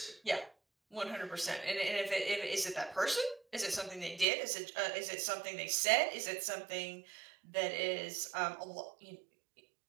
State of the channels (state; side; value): drops out; left; at 4.2 s